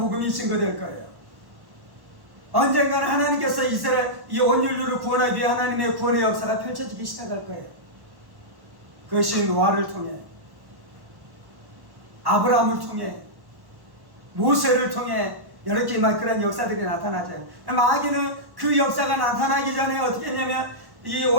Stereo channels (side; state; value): left; late; 1.1 ms